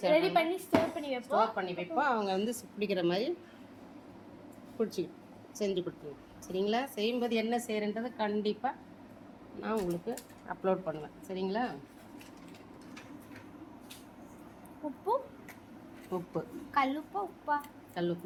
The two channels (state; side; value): identical; both; correlation 1.00